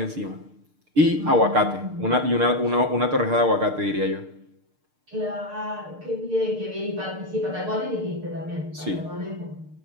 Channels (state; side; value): late; left; 6.6 ms